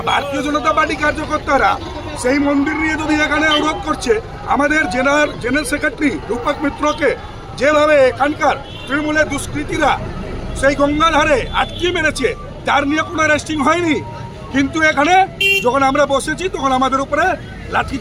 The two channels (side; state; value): both; identical; correlation 1.00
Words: ভারতীয় জনতা পার্টি কার্যকর্তারা সেই মন্দির নিয়ে যদি এখানে অবরোধ করছে, আমাদের জেনারেল সেক্রেটারি রূপক মিত্রকে যেভাবে এখানকার তৃণমূলের দুষ্কৃতীরা সেই গঙ্গার ধারে আটকে মেরেছে, তার নিয়ে কোনো অ্যারেস্টিং হয়নি। কিন্তু এখানে যখন আমরা বসেছি তখন আমাদের উপরে